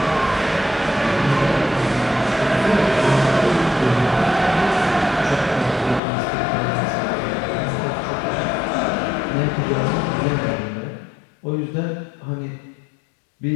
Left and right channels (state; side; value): drops out; right; at 6.0 s